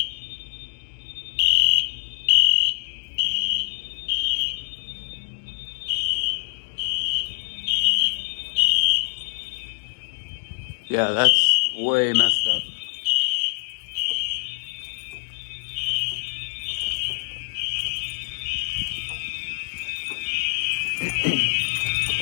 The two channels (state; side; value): silent; right; digital silence